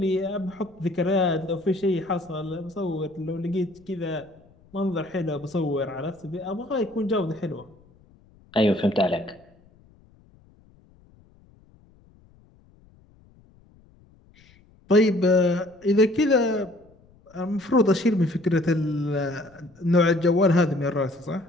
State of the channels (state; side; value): noise; left; rumble, 29 dB below the sound